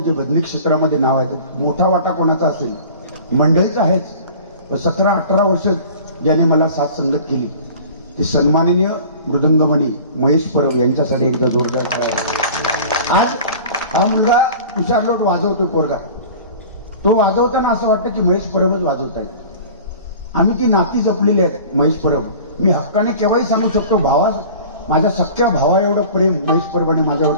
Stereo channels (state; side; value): inverted; both; correlation -0.42